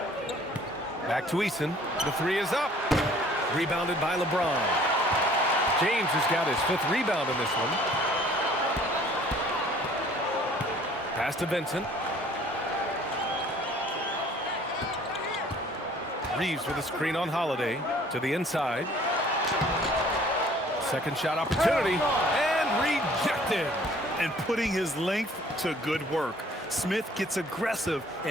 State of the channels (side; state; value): both; normal; correlation 0.54